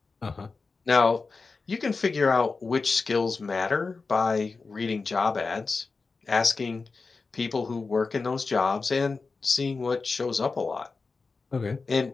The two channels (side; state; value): right; quieter; 4.3 dB